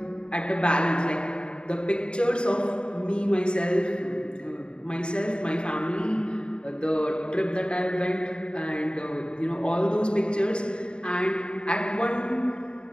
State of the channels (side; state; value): right; late; 0.051 ms